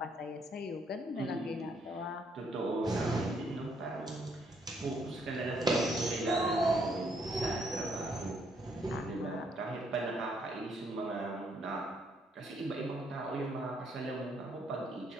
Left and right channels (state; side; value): normal; both; correlation 0.71